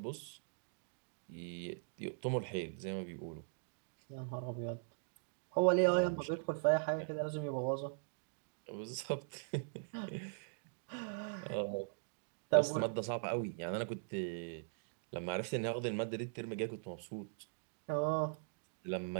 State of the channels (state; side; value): silent; left; digital silence